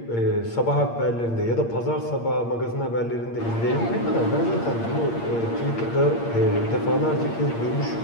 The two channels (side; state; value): right; late; 8.7 ms